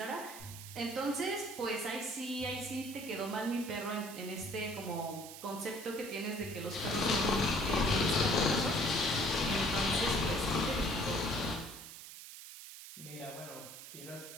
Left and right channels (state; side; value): noise; right; hiss, 13 dB below the sound